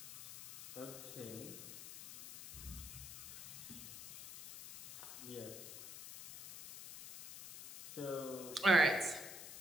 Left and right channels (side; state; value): left; noise; hiss, 12 dB below the sound